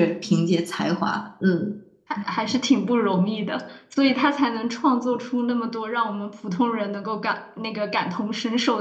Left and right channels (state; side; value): identical; both; correlation 1.00